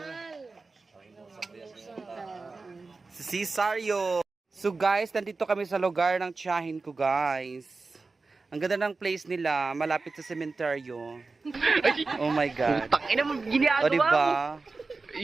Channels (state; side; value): quieter; left; 3.9 dB